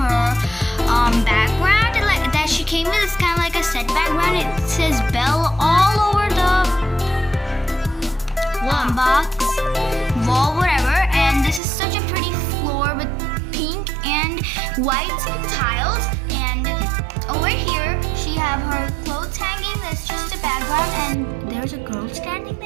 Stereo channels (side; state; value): left; drops out; at 11.6 s